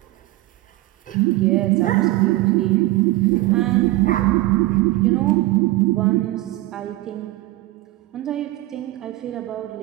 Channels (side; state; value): left; quieter; 18.2 dB